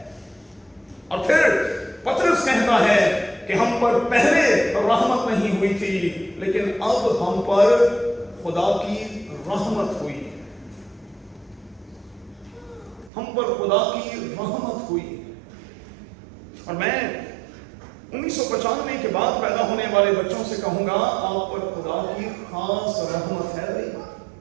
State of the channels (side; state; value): left; drops out; at 13.1 s